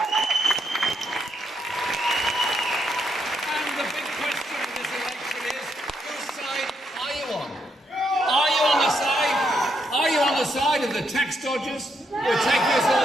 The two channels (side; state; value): both; normal; correlation 0.77